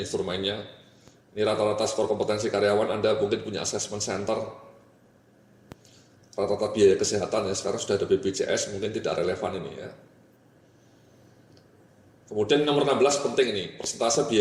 Ini rata-rata skor kompetensi karyawan, Anda mungkin punya assessment center. rata-rata biaya kesehatan ya, sekarang sudah ada BPJS, mungkin tidak relevan ini ya. Kemudian nomor 16 penting ini, persentase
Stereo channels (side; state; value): both; identical; correlation 1.00